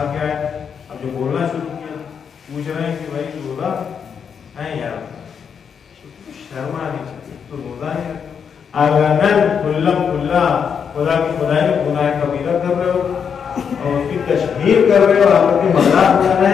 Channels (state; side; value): quieter; right; 7.0 dB